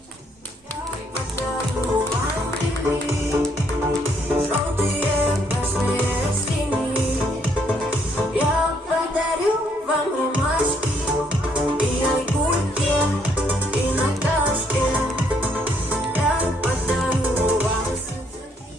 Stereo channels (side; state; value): both; normal; correlation 0.70